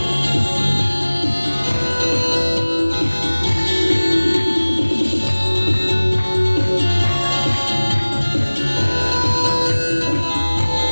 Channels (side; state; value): both; inverted; correlation -1.00